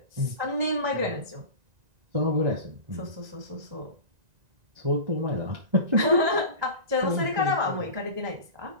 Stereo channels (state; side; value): late; left; 1.9 ms